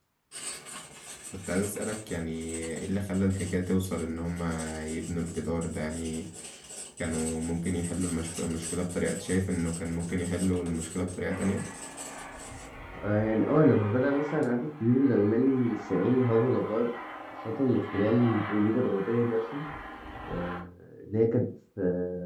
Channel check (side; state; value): both; identical; correlation 1.00